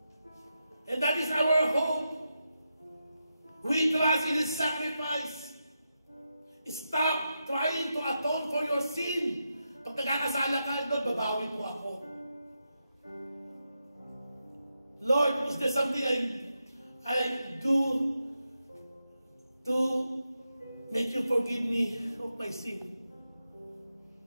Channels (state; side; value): inverted; both; correlation -0.87